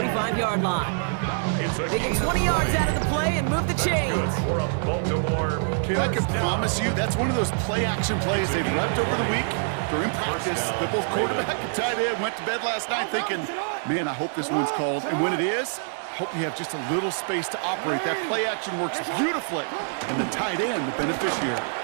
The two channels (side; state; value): left; silent; 61 dB below the other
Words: line. They get 20 yards out of the play and move the chains. Kid, I can promise you that's one of those play-action plays they've left over the week during practice. The both quarterback and tight end went to bed last night thinking, man, I hope this one's called. And when it is, I hope you have just a little space to operate. That play-action works beautifully. And the tight end, the beneficiary.